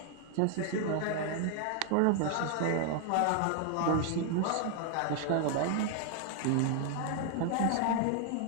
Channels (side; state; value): both; different; correlation 0.00